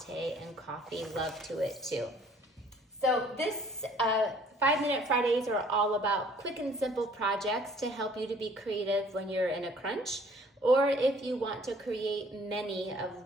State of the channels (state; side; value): normal; both; correlation 0.56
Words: and coffee love to it too. So this 5-Minute Fridays are all about quick and simple projects to help you to be creative when you're in a crunch, or if you want to create many of